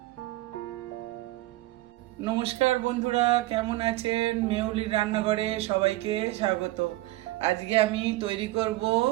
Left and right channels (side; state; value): left; quieter; 18.1 dB